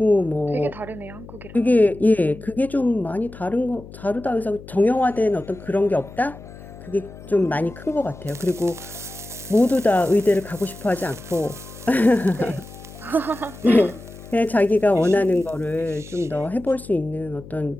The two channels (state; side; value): noise; left; hum, 17 dB below the sound